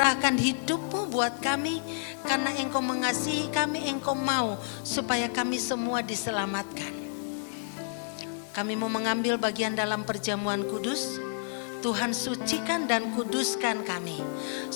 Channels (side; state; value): right; silent; digital silence